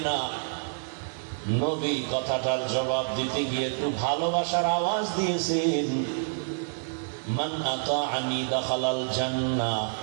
না? নবী কথাটার জবাব দিতে গিয়ে একটু ভালোবাসার আওয়াজ দিয়েছেন, মান আতাআনি দাখালাল জান্নাহ,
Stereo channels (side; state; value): left; silent; digital silence